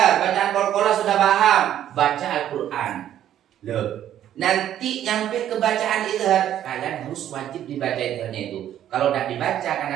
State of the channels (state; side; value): quieter; left; 11.2 dB